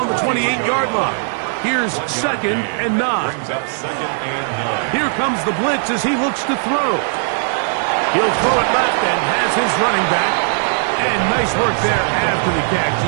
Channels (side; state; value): left; silent; 67 dB below the other